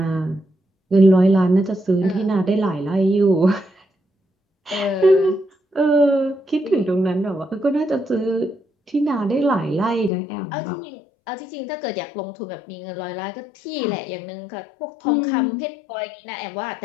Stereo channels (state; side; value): drops out; right; at 10.1 s